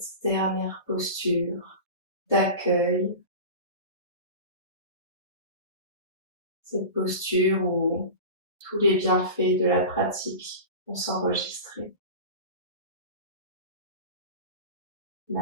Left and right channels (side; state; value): both; inverted; correlation -0.31